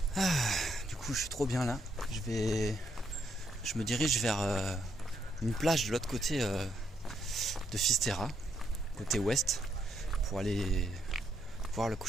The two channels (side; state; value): both; normal; correlation 0.76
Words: Du coup je suis trop bien là. Je me dirige vers une plage de l'autre côté de Finisterre, côté ouest, pour aller voir le